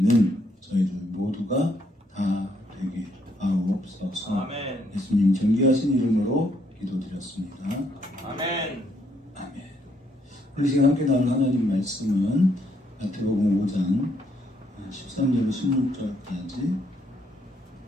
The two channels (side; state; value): both; normal; correlation 0.72